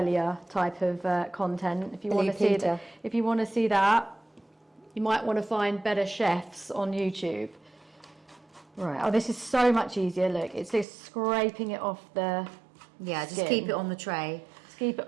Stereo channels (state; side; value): drops out; left; at 10.9 s